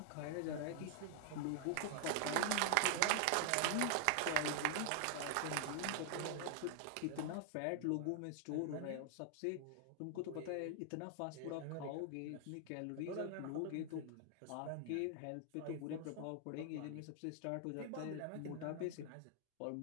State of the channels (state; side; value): different; both; correlation 0.00